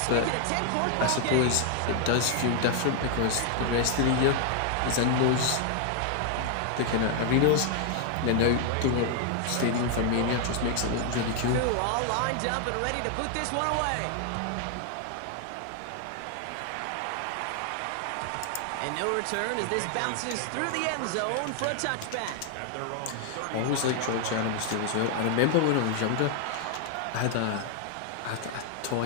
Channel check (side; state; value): both; different; correlation 0.00